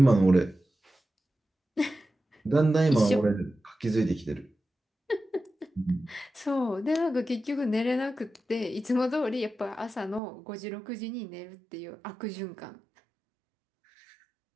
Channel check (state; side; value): drops out; left; at 10.2 s